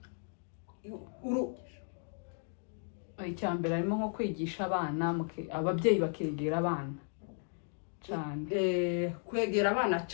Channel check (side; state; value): right; silent; 54 dB below the other